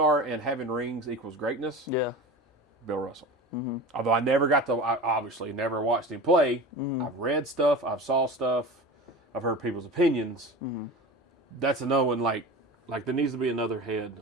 and having rings equals greatness. Yeah. Bill Russell. Although I obviously never watched him play. I've read stuff, I've saw stuff, I've heard people's opinions. That's another one. Like there needs to be another head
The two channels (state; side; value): normal; both; correlation 0.32